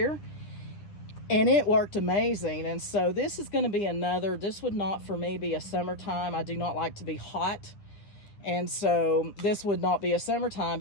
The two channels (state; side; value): late; right; 10 ms